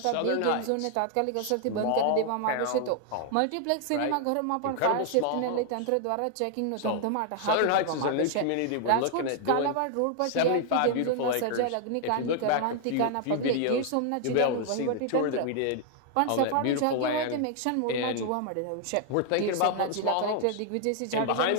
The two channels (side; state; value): both; different; correlation 0.00